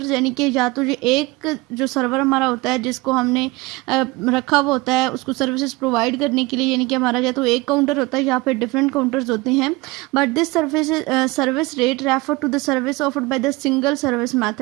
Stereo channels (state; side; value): quieter; left; 22.5 dB